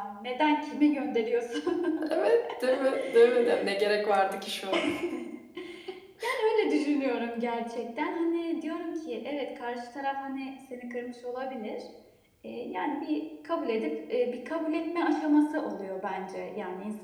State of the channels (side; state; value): both; identical; correlation 1.00